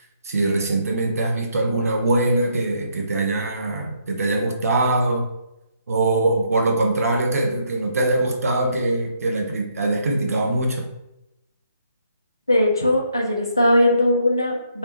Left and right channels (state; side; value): inverted; both; correlation -0.73